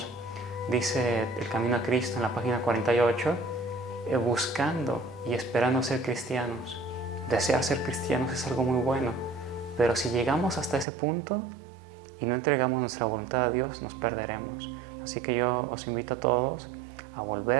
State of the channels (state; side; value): drops out; left; at 10.9 s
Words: dice El Camino a Cristo en la página 48, buscando y esperando ser cristianos. Desear ser cristianos es algo muy bueno, pero si llegamos hasta ese punto y no entregamos nuestra voluntad a Dios, nos perderemos. Así que yo os invito a todos a